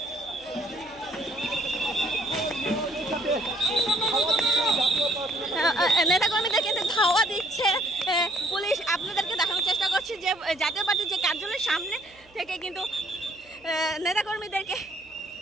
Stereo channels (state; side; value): noise; right; hum, 29 dB below the sound